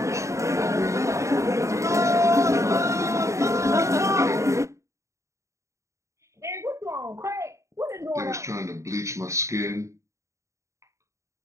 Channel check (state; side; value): late; left; 0.14 ms